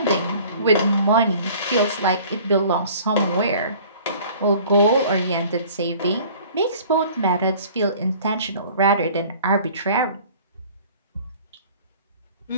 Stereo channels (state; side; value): inverted; both; correlation -0.49